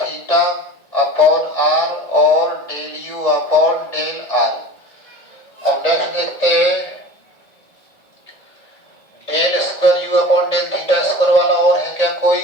upon r और del u upon del r. अब नेक्स्ट देखते हैं del square u upon del theta square वाला और है क्या कोई?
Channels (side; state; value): right; late; 1.8 ms